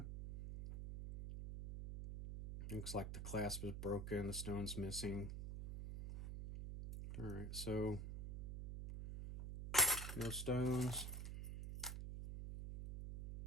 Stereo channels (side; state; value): right; noise; hum, 5 dB below the sound